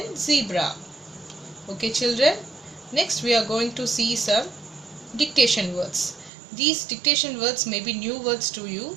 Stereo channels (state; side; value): drops out; left; at 6.3 s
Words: zebra. Okay children, next we are going to see some dictation words. These dictation words may be new words to you,